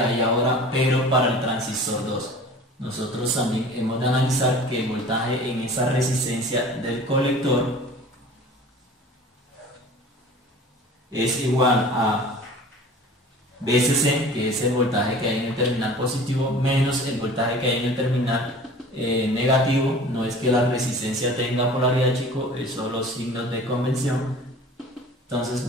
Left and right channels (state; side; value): normal; both; correlation 0.43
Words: ahora, pero para el transistor 2. Nosotros también hemos de analizar que el voltaje en esa resistencia del colector es igual a VCC, que es el voltaje que hay en el terminal positivo, menos el voltaje que hay en el terminal negativo. No es que la resistencia tenga polaridad, chicos, es solo signos de convención. Entonces,